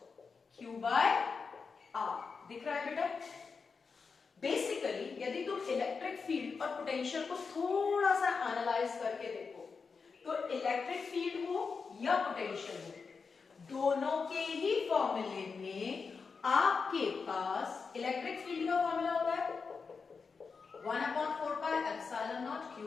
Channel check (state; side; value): quieter; right; 5.1 dB